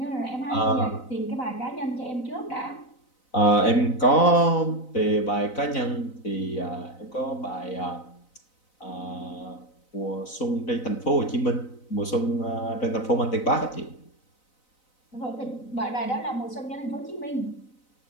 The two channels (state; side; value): late; right; 4.0 ms